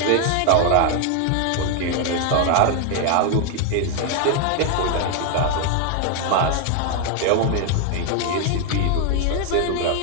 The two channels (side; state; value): both; different; correlation 0.00